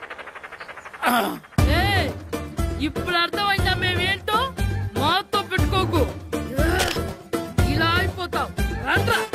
ఇప్పుడు అర్థమైందా మేమేంటో? మాతో పెట్టుకోకు, ఇలా అయిపోతాం.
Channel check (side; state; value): both; identical; correlation 1.00